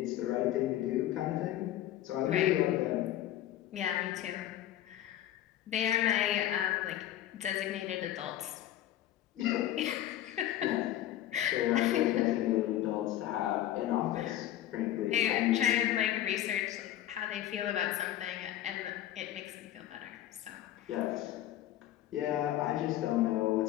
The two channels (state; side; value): quieter; right; 12.8 dB